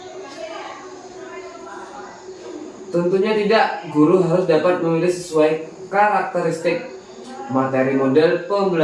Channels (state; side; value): identical; both; correlation 1.00